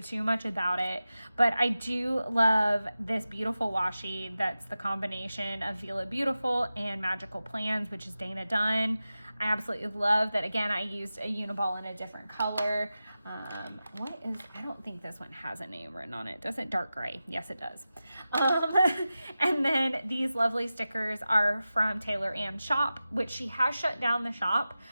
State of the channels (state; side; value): inverted; both; correlation -0.94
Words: much about it, but I do love this beautiful washi that's the combination of Vila Beautiful and Magical Plans, which is Dana Dunn. I absolutely love that. Again, I used a Uniball in a different color. I don't think this one has a name written on it. Does it? Dark gray. Yes, it does. And then these lovely stickers are from Taylor Ann's shop, which she has shut down the shop.